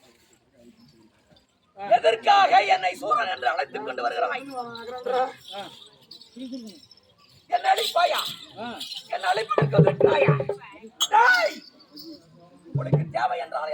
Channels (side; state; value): both; identical; correlation 1.00